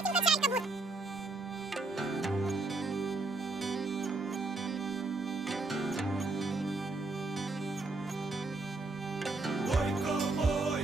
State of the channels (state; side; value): quieter; left; 3.3 dB